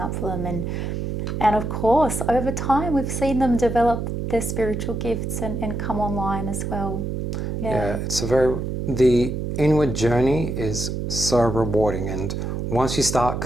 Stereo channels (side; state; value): right; noise; hum, 3 dB below the sound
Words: up for them. And of course, over time, we've seen them develop their spiritual gifts and come online as well. Yeah, the inward journey is so rewarding, and once you start